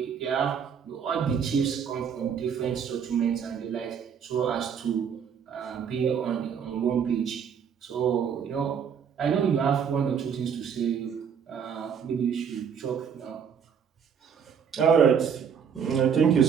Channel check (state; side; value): quieter; left; 7.3 dB